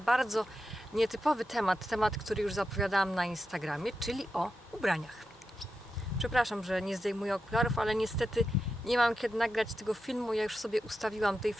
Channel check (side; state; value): both; normal; correlation 0.89